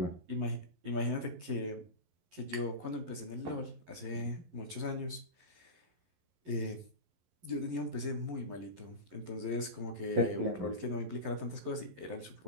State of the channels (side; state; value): left; late; 11 ms